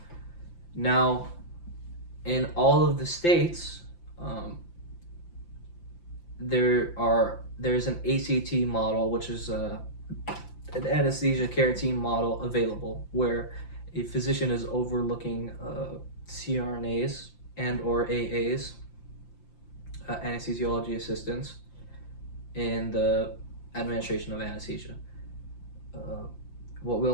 Now, in all of the states, there's an ACT model, which is an anesthesia care team model available, where a physician is overlooking CRNAs and or AAs, anesthesiology assistants, in the administration of anesthesia.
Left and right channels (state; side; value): late; right; 5.8 ms